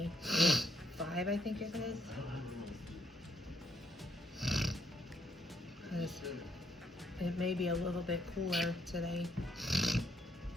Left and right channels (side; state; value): both; normal; correlation 0.74